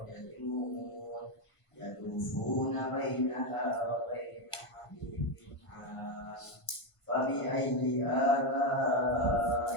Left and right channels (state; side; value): late; right; 1.5 ms